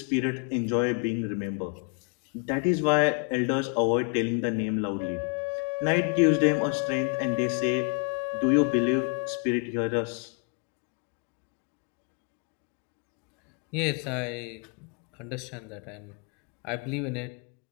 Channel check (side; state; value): right; quieter; 38.7 dB